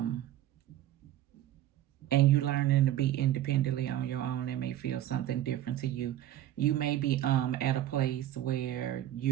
you learning to be independently on your own. That may feel something different to you. You may be at a place where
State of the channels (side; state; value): left; quieter; 12.7 dB